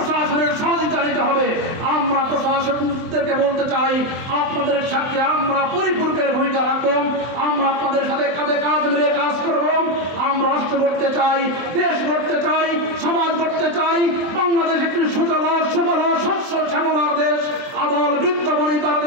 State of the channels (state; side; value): late; left; 23 ms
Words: সহযোগিতা নিতে হবে। আমরা প্রশাসনদেরকে বলতে চাই, আপনাদের সাথে আমরা পরিপূরকের ভূমিকা রাখবো, আমরা আপনাদের সাথে কাঁধে কাঁধ মিলিয়ে কাজ করব। আমরা রাষ্ট্র গড়তে চাই, দেশ গড়তে চাই, সমাজ গড়তে চাই। বাংলাদেশ একটি সুজলা সুবল শস্য শ্যামলার দেশ, আবাল বৃদ্ধ বনিতার